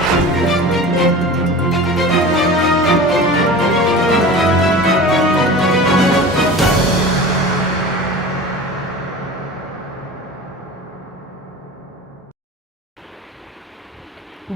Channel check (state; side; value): normal; both; correlation 0.35